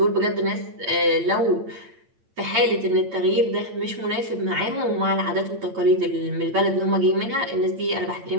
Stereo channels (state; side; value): late; left; 8.8 ms